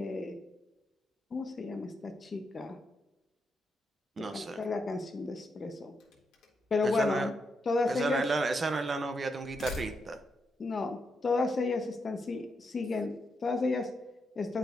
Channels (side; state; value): both; normal; correlation 0.82